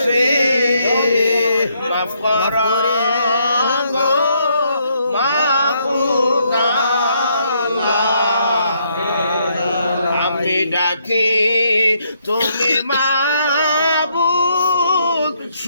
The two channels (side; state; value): both; inverted; correlation -0.73